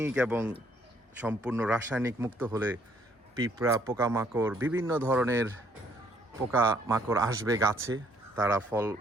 এবং সম্পূর্ণ রাসায়নিক মুক্ত হলে পিঁপড়া, পোকামাকড়, বিভিন্ন ধরনের পোকামাকড় আসবে গাছে,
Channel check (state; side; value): normal; both; correlation 0.66